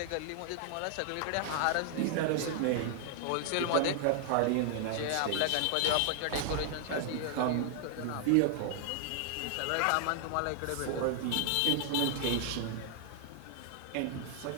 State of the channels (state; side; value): different; both; correlation 0.00